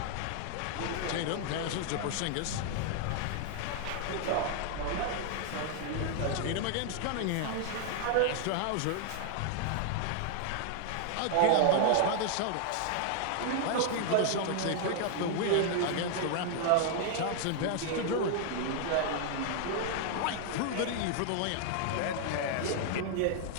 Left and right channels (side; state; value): both; different; correlation 0.00